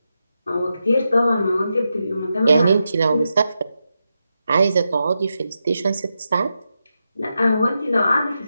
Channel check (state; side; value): inverted; both; correlation -0.87